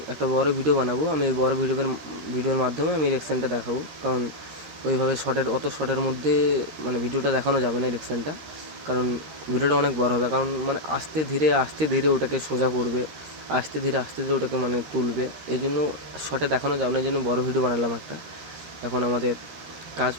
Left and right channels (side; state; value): left; late; 13 ms